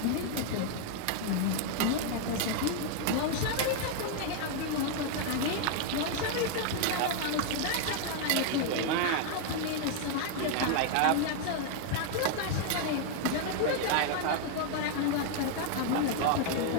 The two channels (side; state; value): both; different; correlation 0.00